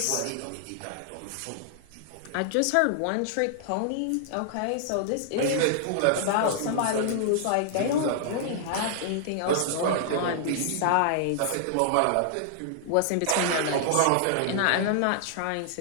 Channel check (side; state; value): both; different; correlation -0.01